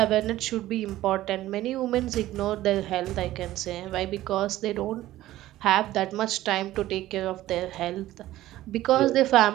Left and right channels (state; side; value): quieter; left; 15.1 dB